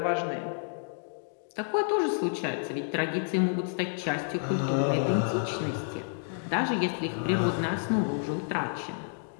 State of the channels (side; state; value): right; silent; digital silence